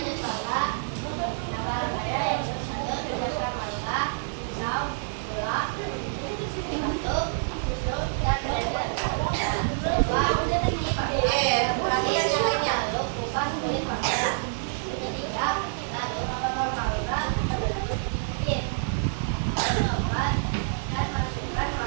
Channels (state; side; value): silent; left; 60 dB below the other